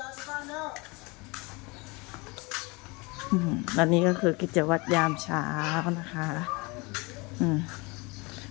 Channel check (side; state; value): right; quieter; 26.7 dB